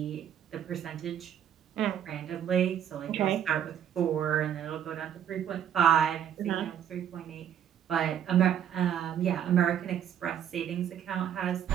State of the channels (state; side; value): quieter; left; 9.6 dB